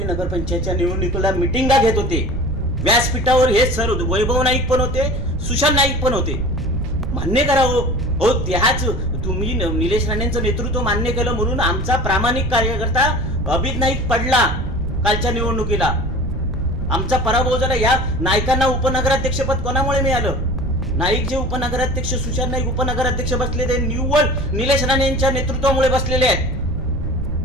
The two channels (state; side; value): noise; right; rumble, 5 dB below the sound